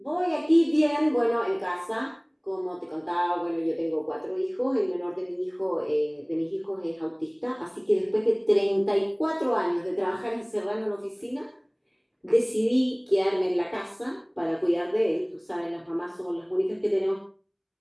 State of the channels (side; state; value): both; identical; correlation 1.00